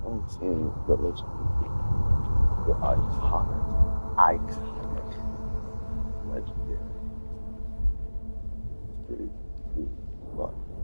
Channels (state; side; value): inverted; both; correlation -1.00